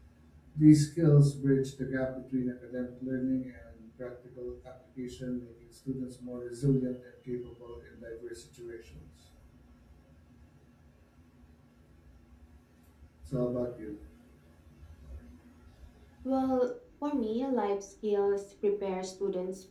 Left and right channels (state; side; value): identical; both; correlation 1.00